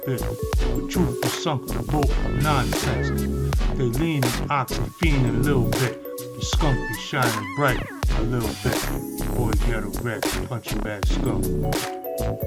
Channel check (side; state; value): both; identical; correlation 1.00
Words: it. The truth is sunk the boat of nonsense. They lean and ox and fiend a little bit. The skunk is shining bright a little bit. Boy, Ghetto Greg, punching bad skunk.